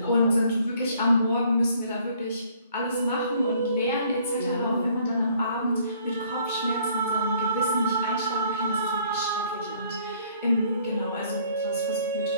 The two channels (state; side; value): inverted; both; correlation -0.61